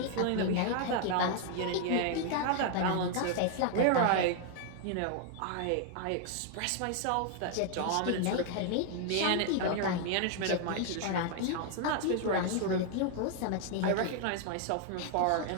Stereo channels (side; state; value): both; different; correlation 0.00